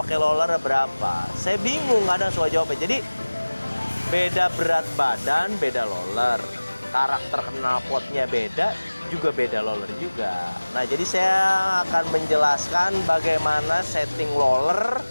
roller berapa?" Saya bingung kadang soal jawabnya. Jadi beda berat badan, beda roller. Karakter knalpotnya beda, juga beda roller juga. Nah, jadi saya akan menjelaskan bagaimana setting roller,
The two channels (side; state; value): both; inverted; correlation -1.00